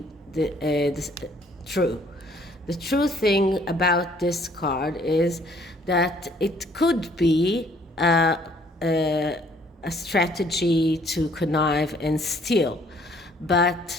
the true. The true thing about this card is that it could be a strategy to connive and steal,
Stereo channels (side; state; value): both; normal; correlation 0.61